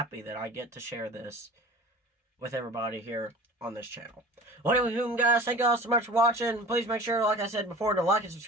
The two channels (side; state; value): both; normal; correlation 0.40